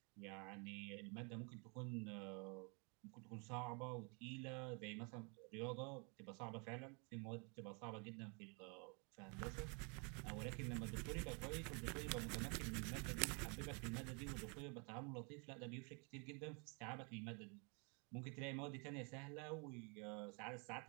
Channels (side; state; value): left; quieter; 34.4 dB